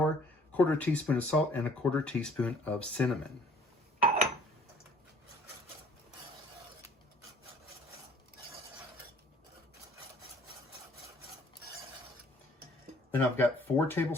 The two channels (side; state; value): both; normal; correlation 0.56